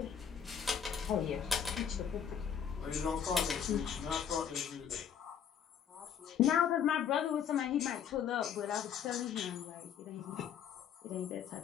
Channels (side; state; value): right; quieter; 8.2 dB